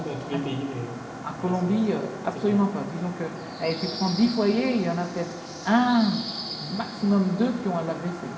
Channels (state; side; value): identical; both; correlation 1.00